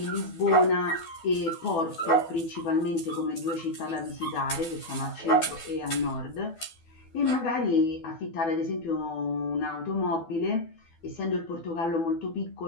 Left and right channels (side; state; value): right; late; 12 ms